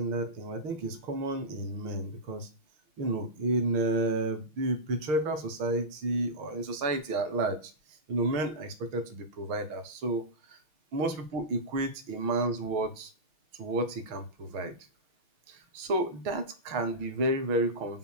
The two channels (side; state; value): left; late; 6.1 ms